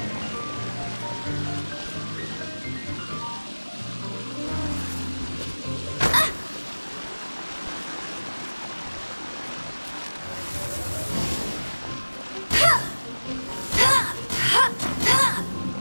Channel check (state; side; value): inverted; both; correlation -1.00